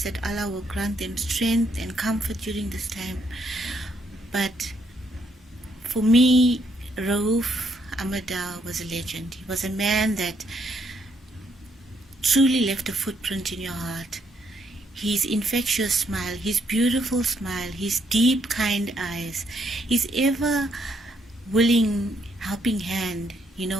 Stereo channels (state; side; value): normal; both; correlation 0.73